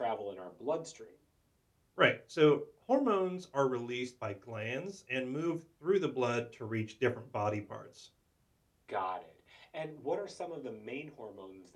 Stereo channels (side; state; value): both; identical; correlation 1.00